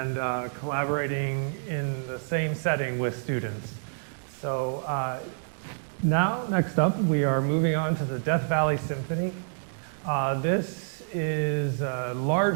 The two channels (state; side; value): silent; left; digital silence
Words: collaborating in the same setting with students. So now, next up, we are moving on to the Death Valley Symphony. This is a